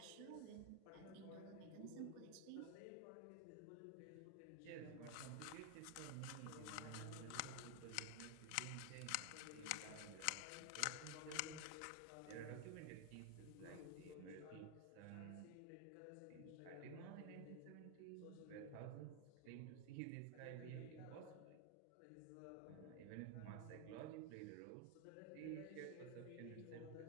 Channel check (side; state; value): both; different; correlation 0.00